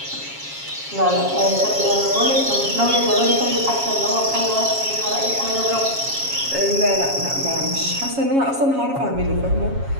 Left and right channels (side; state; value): left; late; 7.3 ms